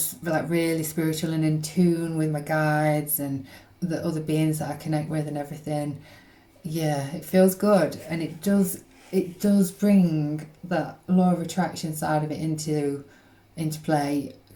like really spiritual and in tune with my guides and the other beings that I connect with and everything, yeah, it feels good, and it does bring that law of attraction side of it into play,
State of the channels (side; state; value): both; identical; correlation 1.00